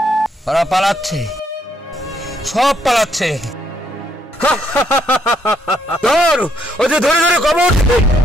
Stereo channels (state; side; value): normal; both; correlation 0.72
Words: ওরা পালাচ্ছে, সব পালাচ্ছে। ধর ওদের ধরে ধরে কবর দে,